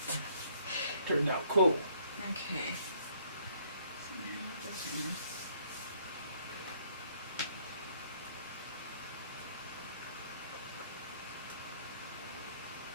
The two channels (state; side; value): inverted; both; correlation -0.64